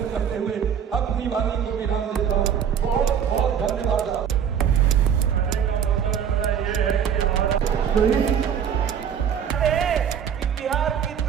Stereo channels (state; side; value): quieter; left; 8.1 dB